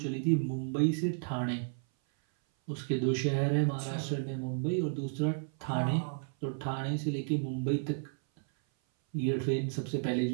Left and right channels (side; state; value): left; silent; 56 dB below the other